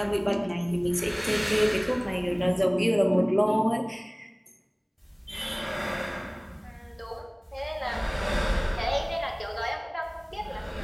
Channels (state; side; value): identical; both; correlation 1.00